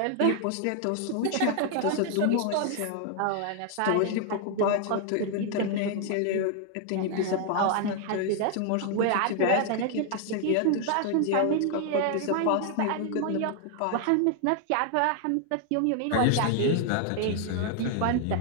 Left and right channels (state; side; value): different; both; correlation 0.00